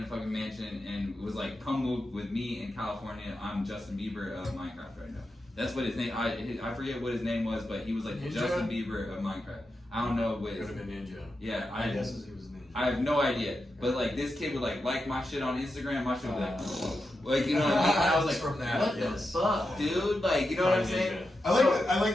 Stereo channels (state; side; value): normal; both; correlation 0.88